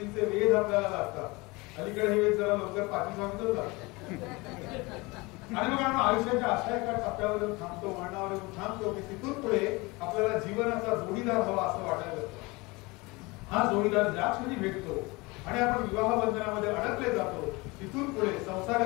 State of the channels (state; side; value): quieter; right; 24.5 dB